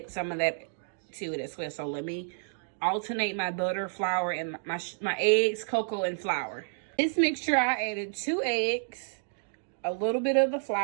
some of that to it as well. So let me alternate my butter, flour, and my eggs, cocoa, and flour. This mixture, I added 2 eggs, a little bit of the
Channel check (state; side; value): silent; left; digital silence